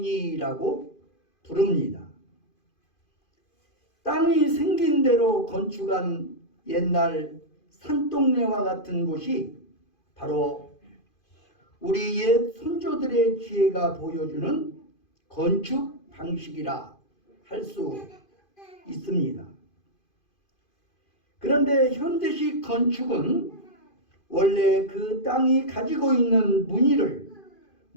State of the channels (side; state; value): right; late; 2.5 ms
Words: 부릅니다. 땅이 생긴 대로 건축한 옛날 산동네와 같은 곳이 바로 우리 옛 선조들의 지혜가 보여주는 건축 방식이라 할 수 있습니다. 그런데 현대식 건축은 원래 그 땅이 가지고 있는 무늬를